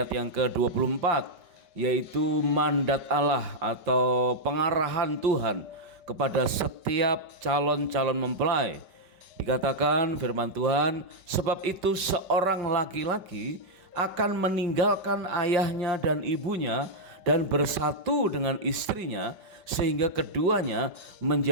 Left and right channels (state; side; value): late; left; 5.2 ms